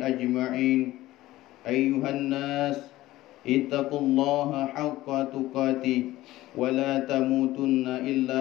ajma'in. Ayyuhan nas, ittaqullaha haqqa tuqatih wa la tamutunna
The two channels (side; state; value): right; quieter; 16.6 dB